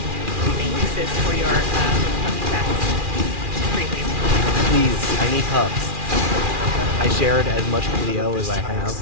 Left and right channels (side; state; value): left; late; 2.4 ms